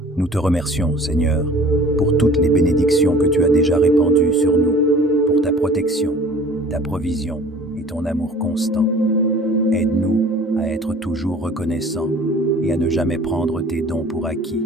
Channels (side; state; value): both; normal; correlation 0.47